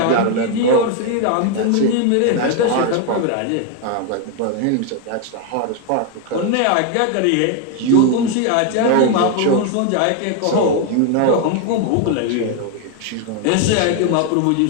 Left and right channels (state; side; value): different; both; correlation 0.01